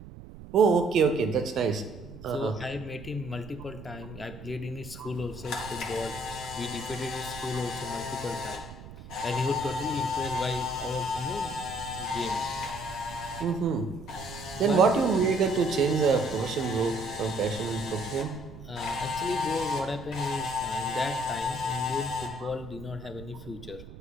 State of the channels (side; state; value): right; noise; rumble, 15 dB below the sound